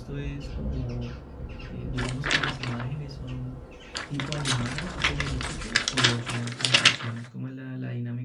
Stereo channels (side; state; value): both; identical; correlation 1.00